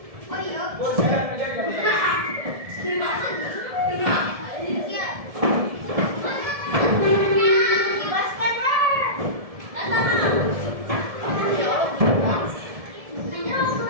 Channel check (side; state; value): left; late; 1.7 ms